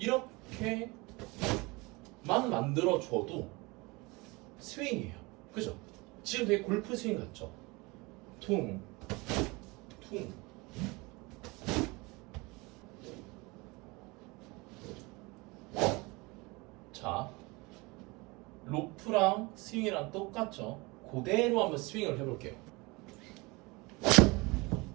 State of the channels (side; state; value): left; quieter; 24.9 dB